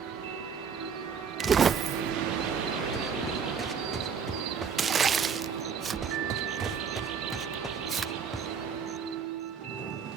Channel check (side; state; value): left; quieter; 6.6 dB